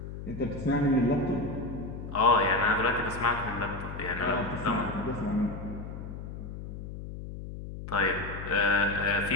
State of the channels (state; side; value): noise; left; hum, 9 dB below the sound